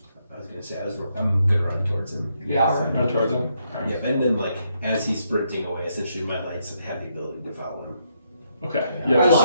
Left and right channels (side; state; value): both; inverted; correlation -0.77